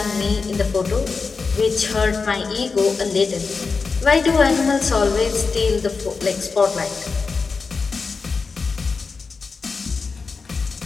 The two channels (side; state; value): right; quieter; 4.7 dB